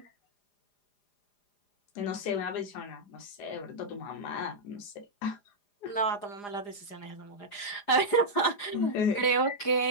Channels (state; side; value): late; right; 4.9 ms